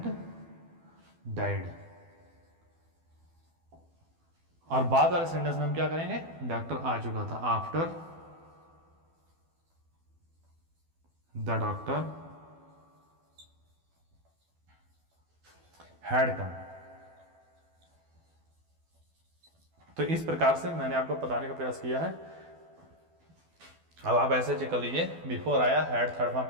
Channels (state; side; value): late; left; 12 ms